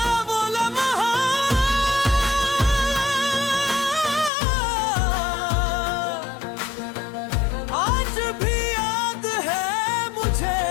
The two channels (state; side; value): drops out; right; at 4.3 s